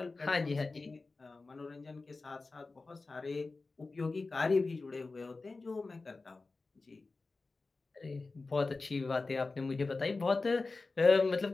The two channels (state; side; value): quieter; right; 3.7 dB